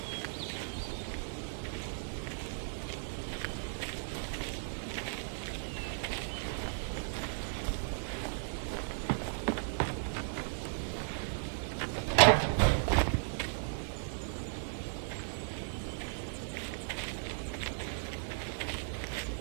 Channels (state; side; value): silent; left; 54 dB below the other